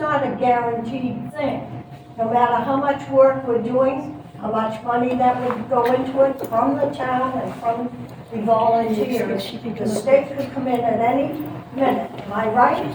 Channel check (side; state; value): both; identical; correlation 1.00